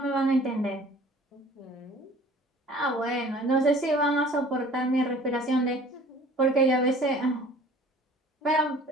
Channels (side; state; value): both; normal; correlation 0.49